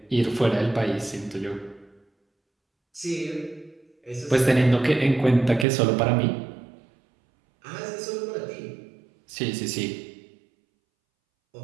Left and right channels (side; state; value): left; drops out; at 5.7 s